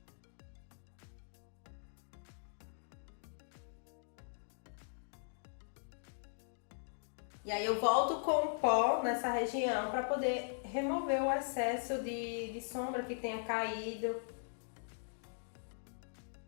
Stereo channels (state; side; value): silent; right; digital silence